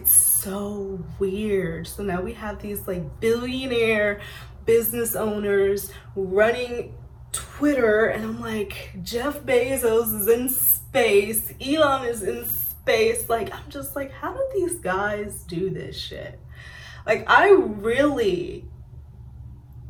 so weird. So now we have these like billionaire business owners running Twitter, and I'm like, Jeff Bezos is in space, Elon is in space. Like, I'm just like, how do these guys do this shit? Like, I really,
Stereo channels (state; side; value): identical; both; correlation 1.00